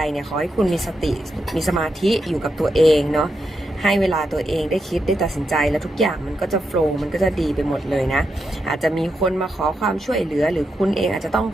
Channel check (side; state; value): both; normal; correlation 0.85